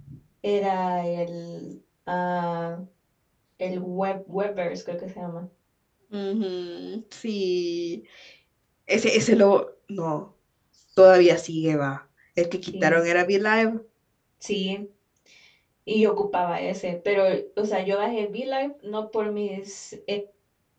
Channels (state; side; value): identical; both; correlation 1.00